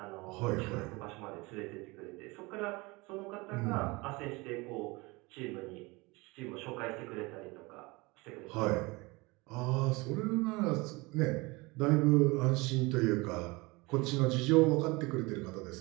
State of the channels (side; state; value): left; quieter; 24.4 dB